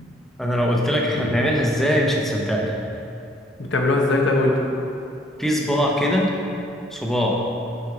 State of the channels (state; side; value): normal; both; correlation 0.63